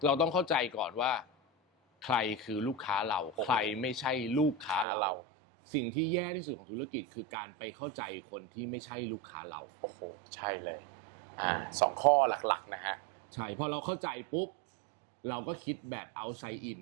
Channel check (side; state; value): left; drops out; at 4.9 s